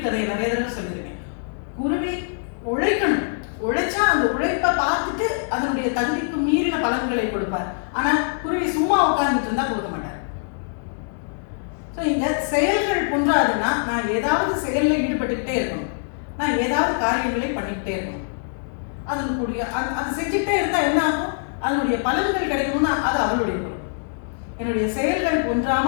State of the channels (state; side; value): silent; right; 63 dB below the other